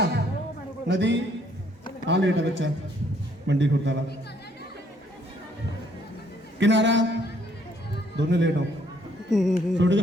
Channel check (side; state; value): both; normal; correlation 0.66